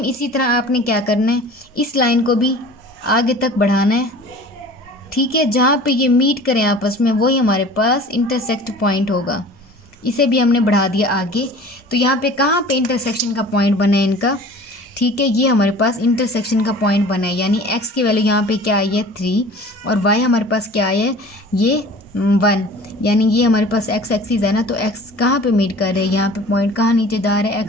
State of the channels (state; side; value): normal; both; correlation 0.44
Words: इसी तरह आपने क्या करना है, इस लाइन को भी आगे तक बढ़ाना है, ठीक है, जहाँ पे ये मीट करें आपस में वही हमारे पास इंटरसेक्ट पॉइंट होगा। इसे भी हमने बढ़ा दिया आगे, तो यहाँ पे कहाँ पे इंटरसेक्शन का पॉइंट बना है इनका, ठीक है, ये हमारे पास इंटरसेक्शन का पॉइंट बना है, यानी x की वैल्यू यहाँ पे क्या आई है 3 और y हमारे पास क्या आई है ये 1, यानी ये हमारे पास x एक्सिस है ना, तो x कहाँ पे मीट कर रहे हैं, यहाँ पे पॉइंट कहाँ नीचे जा रहा है